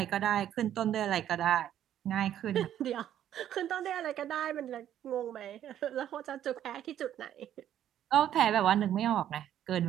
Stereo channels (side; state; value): left; quieter; 11.0 dB